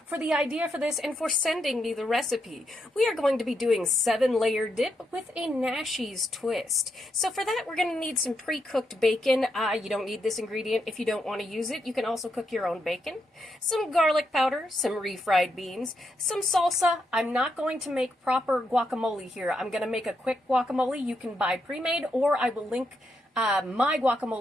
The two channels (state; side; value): normal; both; correlation 0.81